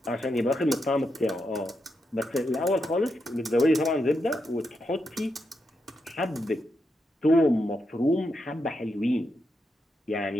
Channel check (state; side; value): normal; both; correlation 0.84